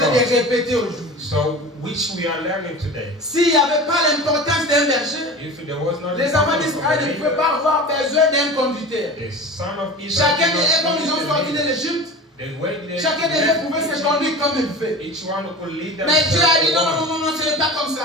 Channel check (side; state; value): both; normal; correlation 0.34